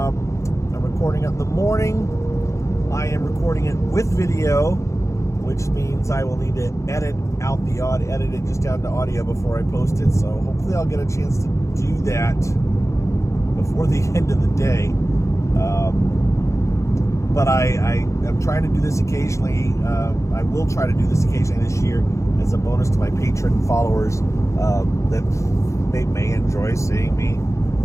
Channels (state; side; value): late; right; 0.14 ms